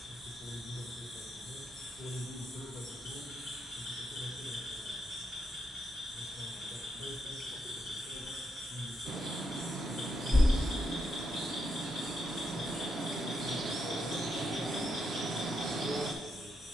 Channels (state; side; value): normal; both; correlation 0.81